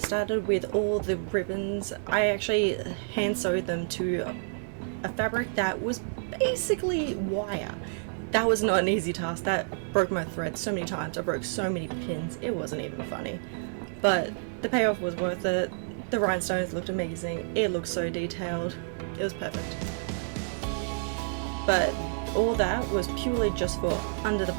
with all the ribbons. I actually hand sewed them to a fabric that was basically wire. That was not an easy task. That broke my thread so many times. I broke so many pins. It wasn't even funny. But the payoff was worth it. The rhinestones looked amazing. It looked so detailed. It was perfect. But all that was purely just for under the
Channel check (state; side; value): silent; left; digital silence